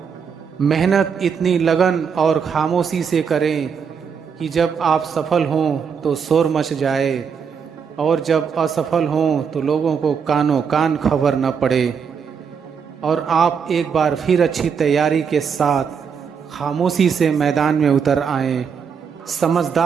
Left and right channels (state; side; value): quieter; left; 6.6 dB